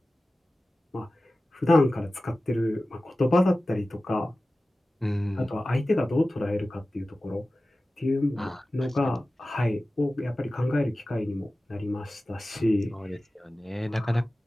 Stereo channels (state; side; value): normal; both; correlation 0.96